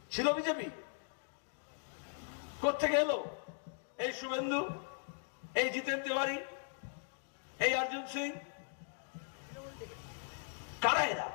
ছিল বিজেপি? কোত্থেকে এলো? এই শুভেন্দু, এই জিতেন তিওয়ারি, এই অর্জুন সিং, কারা এরা?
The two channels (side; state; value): right; silent; digital silence